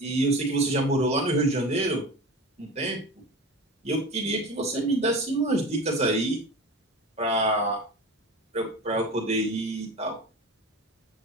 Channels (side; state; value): both; normal; correlation 0.31